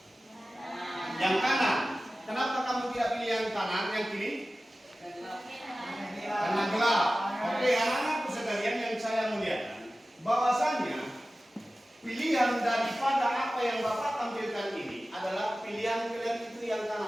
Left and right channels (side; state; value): both; normal; correlation 0.96